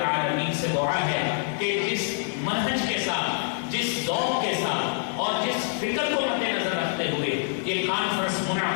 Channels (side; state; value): right; silent; 61 dB below the other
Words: سے دعا ہے کہ جس منہج کے ساتھ، جس ذوق کے ساتھ اور جس فکر کو مد نظر رکھتے ہوئے یہ کانفرنس